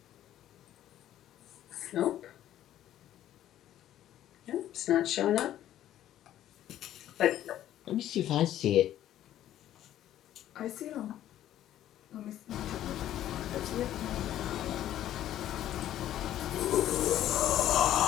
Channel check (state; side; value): quieter; right; 12.3 dB